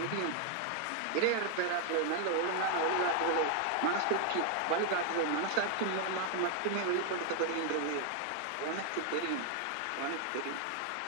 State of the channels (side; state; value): both; different; correlation 0.00